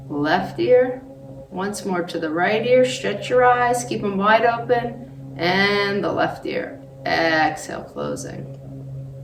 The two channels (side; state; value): both; identical; correlation 1.00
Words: left ear. Once more to the right ear. Stretch your eyes, keep them wide open. And the left ear. Exhale, closing.